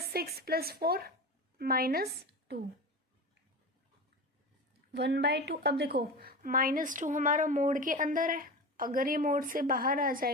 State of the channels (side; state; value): both; normal; correlation 0.27